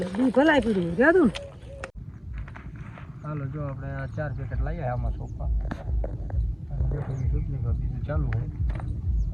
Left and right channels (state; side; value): identical; both; correlation 1.00